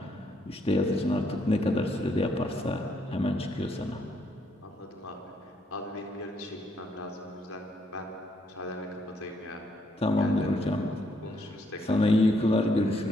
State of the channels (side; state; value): both; normal; correlation 0.72